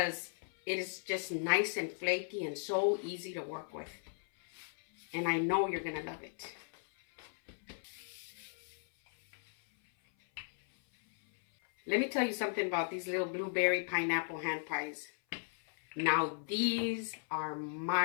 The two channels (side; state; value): right; silent; 54 dB below the other